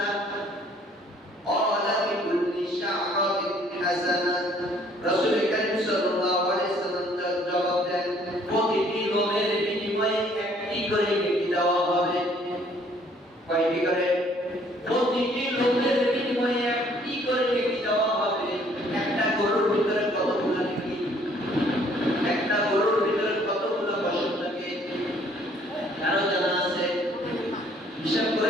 ক্বালা লিকুল্লি শা'রাতিন হাসানা। রাসূল করিম সাল্লাল্লাহু আলাইহি ওয়াসাল্লাম জবাব দেন, প্রতিটি লোমের বিনিময়ে একটি করে নেকি দেওয়া হবে। কয়টি করে? প্রতিটি লোমের বিনিময়ে একটি করে নেকি দেওয়া হবে। একটা গরুর ভিতরে কতগুলো নেকি? একটা গরুর ভিতরে কতগুলো পশম থাকে? কারো জানা আছে? হিসাব করে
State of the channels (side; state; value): both; normal; correlation 0.61